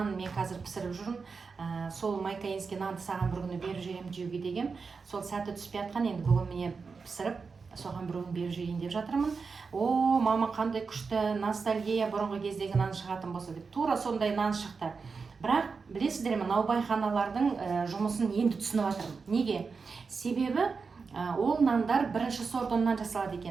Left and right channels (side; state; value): left; quieter; 4.9 dB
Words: мен қазір пісіріп жүрмін. Сол майкаинский нанды саған бір күні беріп жіберемін жеуге деген. Сол сәті түспей жатқан, енді бүгін міне пісіріп, соған бір күн беріп жіберейін деп жатырмын. О, мама, қандай күшті ностальгия, бұрынғы кездегі нан шығатын болса деп. Тура сондай нан шықты. Бірақ білесіздер ме, наубайханалардың жұмысын енді түсініп жатырмын. Неге? Себебі ол нандар бірінші сорт ұннан жасалады